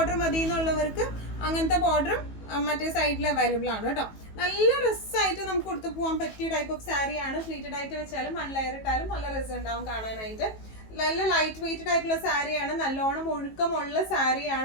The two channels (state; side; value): late; right; 18 ms